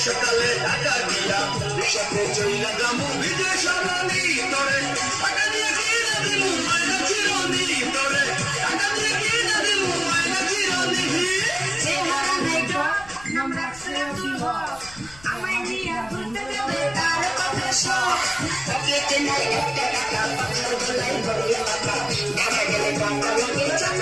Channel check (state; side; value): noise; left; rumble, 21 dB below the sound